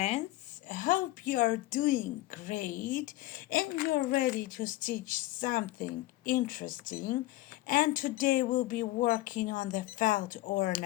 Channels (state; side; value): quieter; right; 17.5 dB